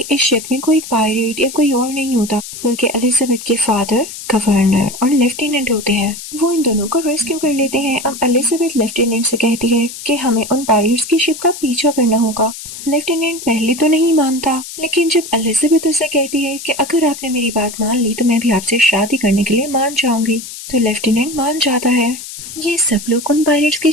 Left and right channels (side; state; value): left; noise; hiss, 11 dB below the sound